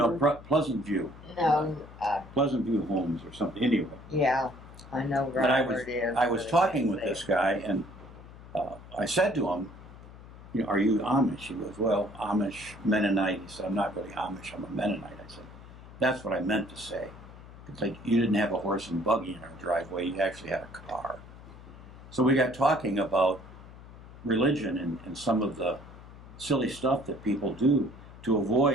Pleasant View. No, Pleasant View Homes or something. Anyway. yeah, I know But right where it is. I was talking with this guy, and I said to him, are you Amish? He goes, well, Amish, Mennonite. He said, I'm not really Amish, I'm a Mennonite. I said, that's what I meant to say. It's like you didn't have a horse and buggy in our driveway, you actually had a car. So we got talking about religion and some of the silly stuff that people do to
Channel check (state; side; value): noise; left; hum, 17 dB below the sound